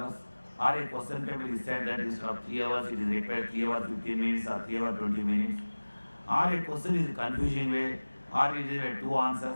or a question paper is said that instead of 3 hours, it is required 3 hours 15 minutes or 3 hours 20 minutes. Or a question is confusing way, or it is 2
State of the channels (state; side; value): inverted; both; correlation -1.00